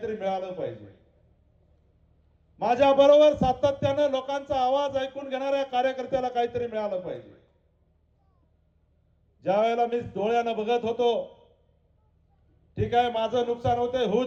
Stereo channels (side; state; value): both; identical; correlation 1.00